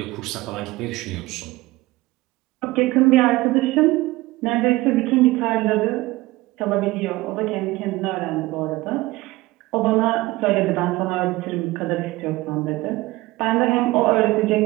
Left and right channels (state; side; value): quieter; left; 19.6 dB